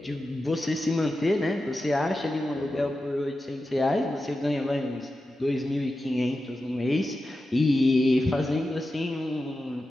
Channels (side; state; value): both; normal; correlation 0.92